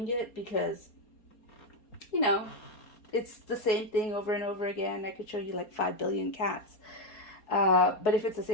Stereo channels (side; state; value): right; late; 4.3 ms